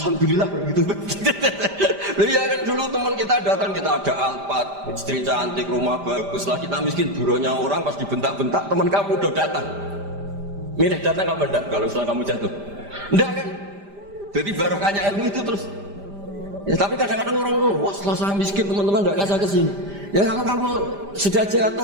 gitu. Loh ya kan dulu teman kita datang, kita ada Alphard, istri cantik, rumah bagus lah, kita miskin buruhnya orang pas dibentak-bentak, teman kamu udah datang. Milih datang apa enggak kalau setelah kamu jatuh? Enggak kan? Jadi barokahnya ilmu itu terus. Ya tapi kadang-kadang orang wah setelah saya miskin teman-teman enggak kasih kesini. Ya kalau kamu sudah jatuh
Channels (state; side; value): late; left; 5.0 ms